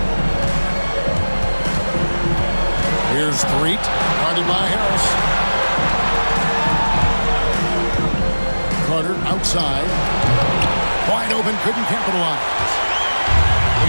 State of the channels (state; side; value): inverted; both; correlation -1.00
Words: Street, guarded by Harris. Carter outside. Wide open, couldn't capitalize.